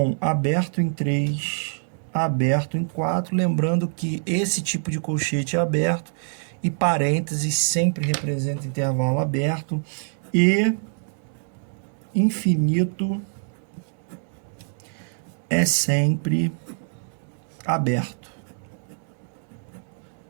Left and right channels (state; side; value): silent; left; digital silence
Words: aberto em 3, aberto em 4. Lembrando que esse tipo de colchete é aberto e parênteses sempre representa intervalo aberto e infinito é sempre aberto.